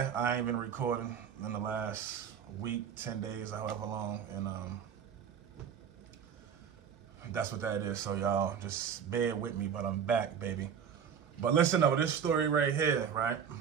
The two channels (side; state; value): left; quieter; 7.6 dB